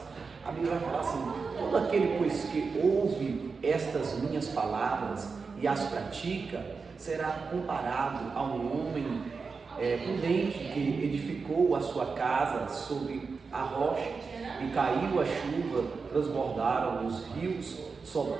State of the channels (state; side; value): quieter; left; 4.8 dB